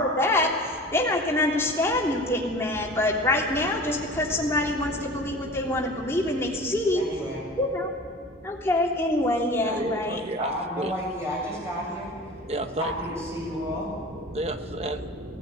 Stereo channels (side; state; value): both; normal; correlation 0.38